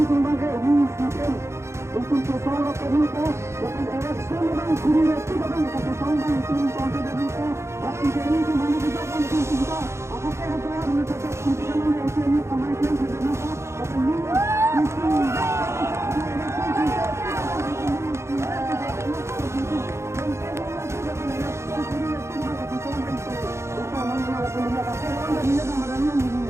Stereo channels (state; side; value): late; left; 0.13 ms